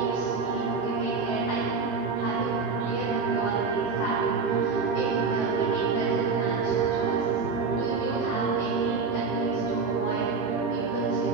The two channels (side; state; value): left; quieter; 4.7 dB